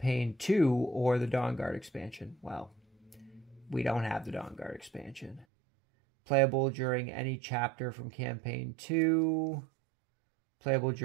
2 or the Dawnguard expansion. Well, we don't have the Dawnguard expansion. Playable during any chapter from Campaign 2. Playable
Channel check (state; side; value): drops out; left; at 5.5 s